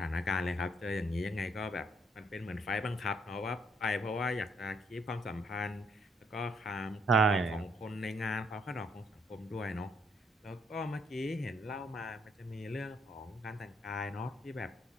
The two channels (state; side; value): normal; both; correlation 0.70